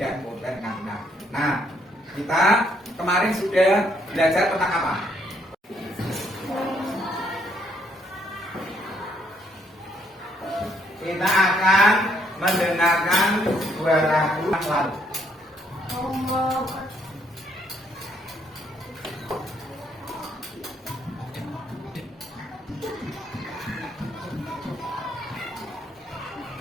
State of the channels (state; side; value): normal; both; correlation 0.70